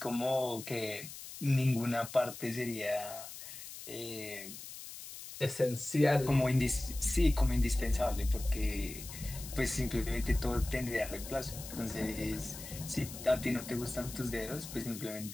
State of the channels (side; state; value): left; noise; hiss, 12 dB below the sound